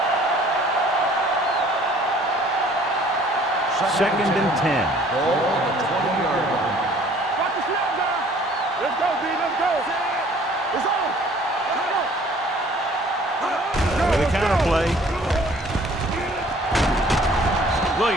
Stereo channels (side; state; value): both; normal; correlation 0.54